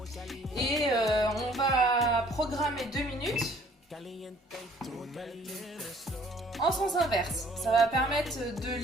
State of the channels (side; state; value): both; normal; correlation 0.57